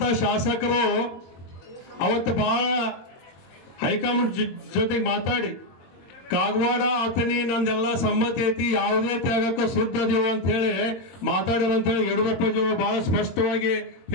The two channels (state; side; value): late; right; 22 ms